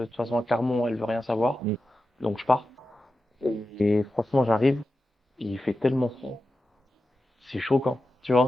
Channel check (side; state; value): both; normal; correlation 0.92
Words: toute façon à Clermont, elle veut rien savoir, Mm. donc je pars. Et franchement, j'arrive, il fait tellement froid, c'est choquant, tu